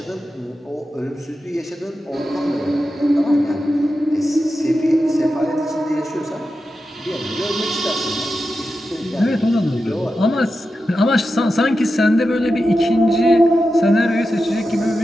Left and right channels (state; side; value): normal; both; correlation 0.90